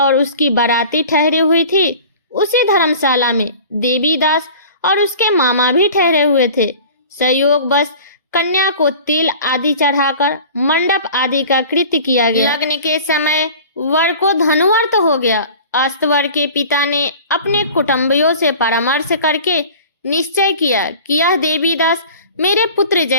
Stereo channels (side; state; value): both; inverted; correlation -0.42